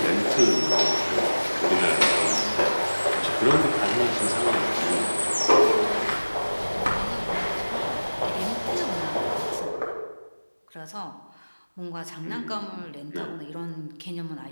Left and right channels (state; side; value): inverted; both; correlation -1.00